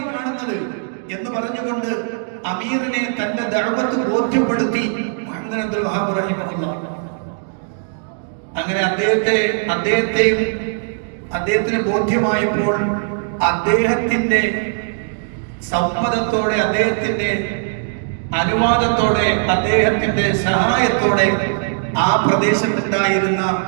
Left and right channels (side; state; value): left; silent; 66 dB below the other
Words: ഈ കാണുന്നത് എന്ന് പറഞ്ഞുകൊണ്ട് അമീറിനെ തന്റെ ദഅവത്ത് ബോധ്യപ്പെടുത്തി മുഹമ്മദ് അബ്ദുൽ വഹാബ് റഹിമഹുള്ള. അങ്ങനെ അദ്ദേഹത്തിന് ബോധ്യമായപ്പോൾ അദ്ദേഹത്തിന്റെ സമ്മതത്തോടെ, അദ്ദേഹത്തിന്റെ അനുവാദത്തോടെ, അദ്ദേഹത്തിന്റെ സഹായത്തോടെ ആ പ്രദേശത്തുണ്ടായിരുന്ന